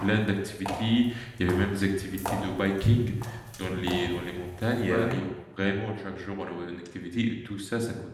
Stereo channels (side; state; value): both; identical; correlation 1.00